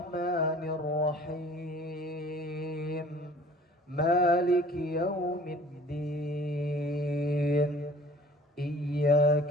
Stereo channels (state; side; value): normal; both; correlation 0.50